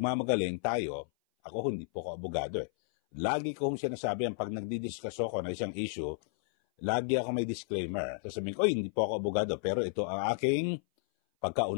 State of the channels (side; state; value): right; silent; 56 dB below the other